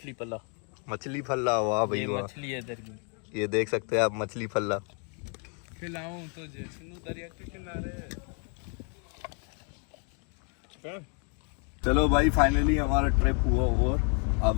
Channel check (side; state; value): right; quieter; 39.2 dB